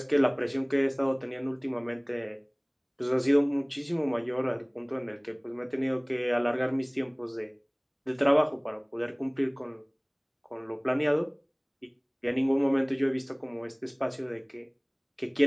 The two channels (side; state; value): both; identical; correlation 1.00